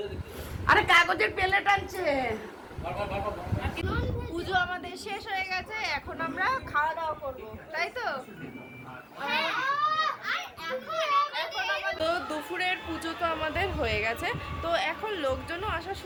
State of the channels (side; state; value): both; identical; correlation 1.00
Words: আরে কাগজের প্লেট আনছে। পুজো আমাদের শেষ হয়ে গেছে, এখন আমরা খাওয়া দাওয়া করবো, তাই তো? তো দুপুরের পুজো তো আমাদের হয়ে গেছে, তো এখন লোকজনও আসা